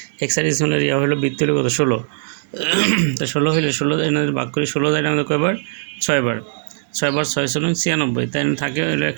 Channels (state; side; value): silent; left; digital silence